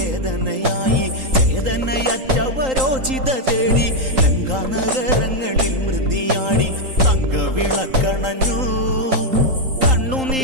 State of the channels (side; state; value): left; late; 3.8 ms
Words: ചേതനയറ്റവരോചിത തേടി ലങ്കാനഗരങ്ങളിൽ മൃതിയാടി. തങ്കവിളക്കണഞ്ഞു,